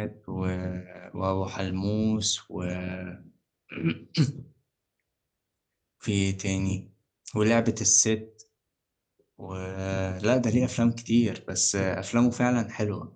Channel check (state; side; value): identical; both; correlation 1.00